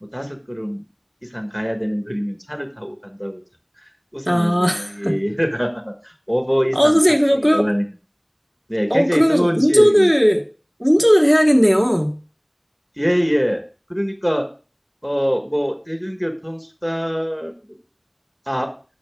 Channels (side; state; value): both; identical; correlation 1.00